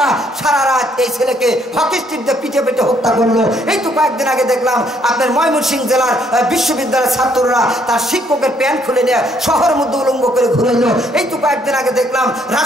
সারা রাত এই ছেলেকে হকি স্টিক দিয়ে পিঠে পেটে হত্যা করলো। এই তো কয়েকদিন আগে দেখলাম আপনার ময়মনসিংহ জেলার বিশ্ববিদ্যালয়ের ছাত্ররা তার শিক্ষকের প্যান্ট খুলে নিয়ে শহরের মধ্যে উলঙ্গ করে ঘুরাইলো। এই তো কয়েকদিন আগে দেখলাম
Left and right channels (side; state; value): both; normal; correlation 0.68